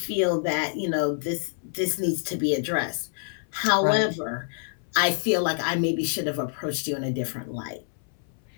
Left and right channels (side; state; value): right; silent; 60 dB below the other